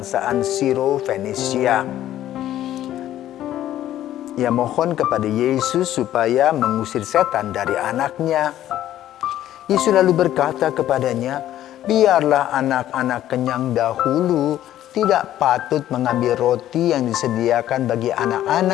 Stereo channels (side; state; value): right; quieter; 12.6 dB